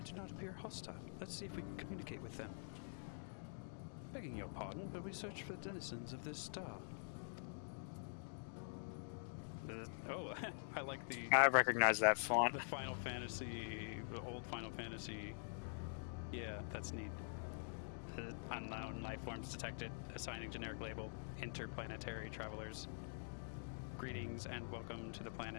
Let's see if we can communicate with them. Begging your pardon, but we search for denizens of this style. Oh, I like the... I recognize that font. The Final Fantasy, the old Final Fantasy. Yeah, that's neat. The life forms detected, assigned generic label, interplanetary travelers. Greetings and welcome to the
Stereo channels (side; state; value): right; silent; digital silence